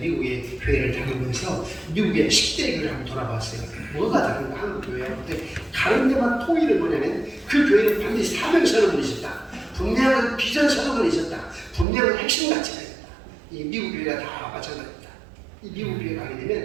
교회를 다니면서 미국의 10대 교회를 한번 돌아봤어요. 뭐가 다른가 한국 교회하고. 근데 다른 데만 통일은 뭐냐면 그 교회는 반드시 사명 선언이 있었다. 분명한 비전 선언이 있었다. 분명한 핵심 가치가 있었다. 이 미국 교회가 다 마찬가지입니다. 이 미국 교회 가게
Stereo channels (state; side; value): drops out; left; at 11.9 s